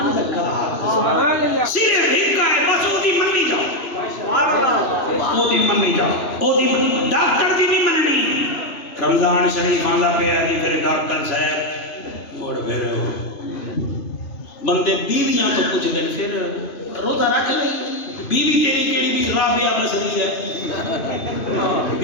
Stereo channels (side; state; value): right; late; 3.0 ms